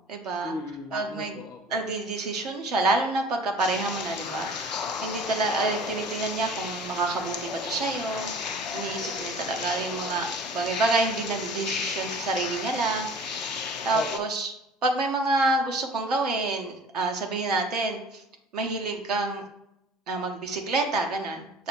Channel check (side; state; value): both; normal; correlation 0.46